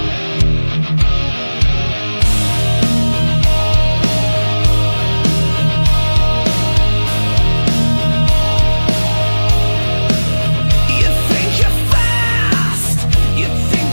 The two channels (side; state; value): both; inverted; correlation -1.00